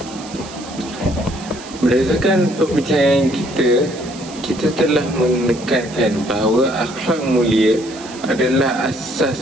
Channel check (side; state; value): right; noise; hiss, 17 dB below the sound